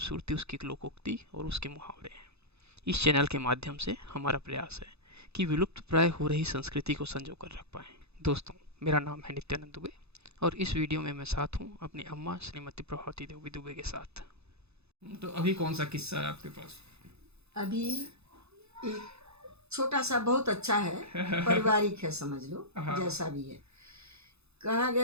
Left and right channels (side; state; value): left; late; 0.79 ms